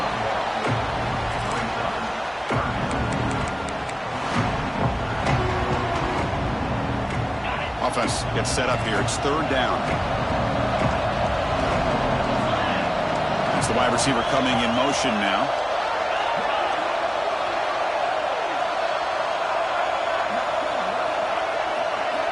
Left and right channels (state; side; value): identical; both; correlation 1.00